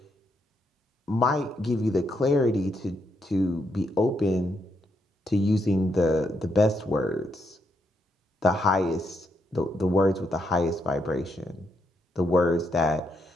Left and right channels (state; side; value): normal; both; correlation 0.79